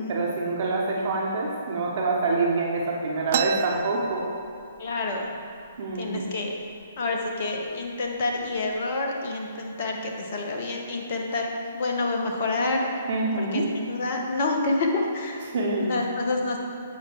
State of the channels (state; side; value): inverted; both; correlation -0.61